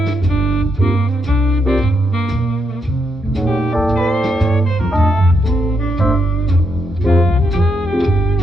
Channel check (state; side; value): normal; both; correlation 0.80